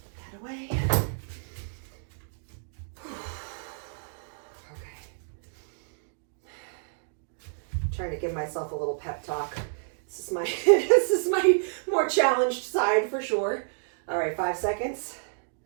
away. Okay. Trying to give myself a little pep talk. This is my this is my more challenged side for sure. All right, 5 seconds.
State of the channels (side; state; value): left; silent; digital silence